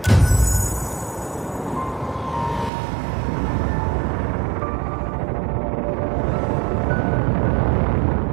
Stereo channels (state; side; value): drops out; left; at 2.7 s